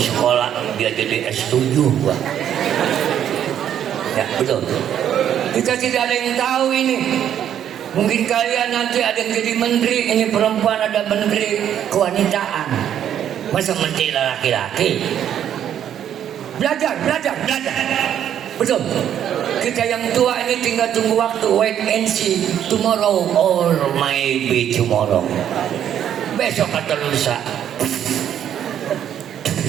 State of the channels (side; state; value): left; quieter; 9.9 dB